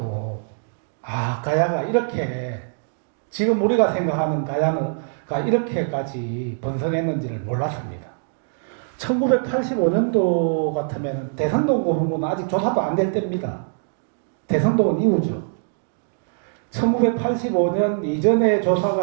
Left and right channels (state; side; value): silent; left; digital silence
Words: 가야가 이렇게 지금 우리가 생각하는 가야가 이렇게까지 번성했는지를 몰랐습니다. 1985년도 같으면 대성동 고분군은 아직 조사도 안 될 때입니다. 대성동은 이후죠. 1985년 이전에